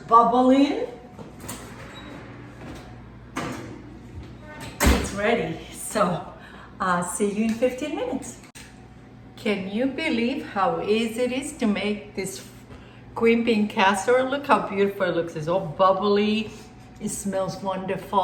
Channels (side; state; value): both; identical; correlation 1.00